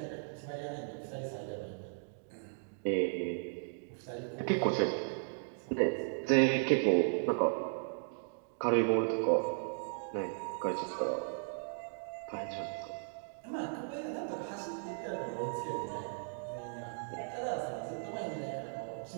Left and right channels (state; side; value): silent; left; digital silence